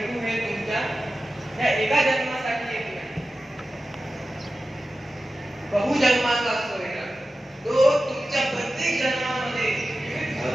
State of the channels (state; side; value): normal; both; correlation 0.94